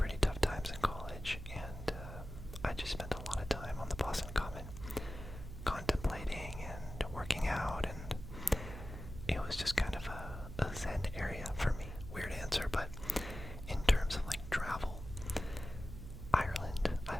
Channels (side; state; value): right; noise; hum, 10 dB below the sound